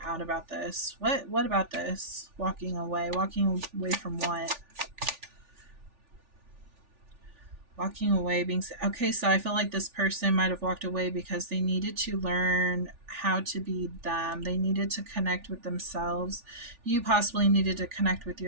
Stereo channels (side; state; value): left; late; 3.4 ms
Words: out about this. What about this? Walking away. Walking away from what? Walking away, being okay. So I feel like this person might have walked away because they needed to learn how to be them. They needed to connect with themselves. You possibly needed to connect with